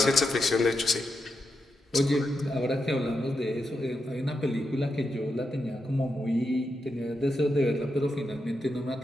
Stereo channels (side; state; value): both; normal; correlation 0.85